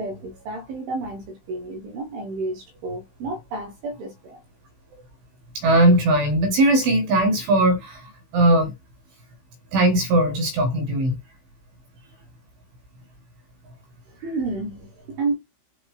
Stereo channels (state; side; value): late; left; 16 ms